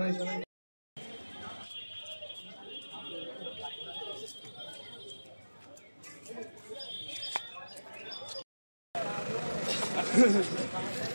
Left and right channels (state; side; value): inverted; both; correlation -1.00